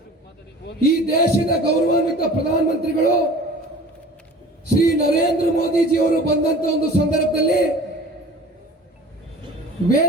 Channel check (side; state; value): both; normal; correlation 0.42